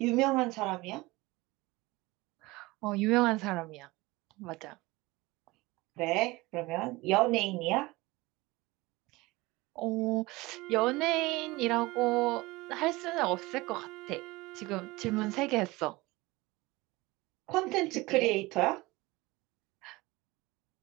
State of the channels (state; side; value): quieter; left; 21.5 dB